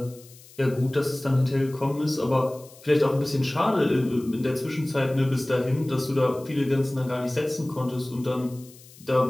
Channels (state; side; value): noise; left; hiss, 23 dB below the sound